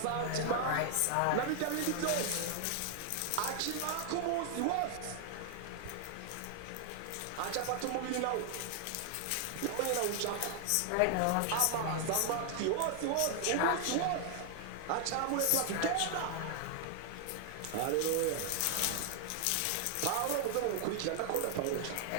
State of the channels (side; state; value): both; different; correlation 0.00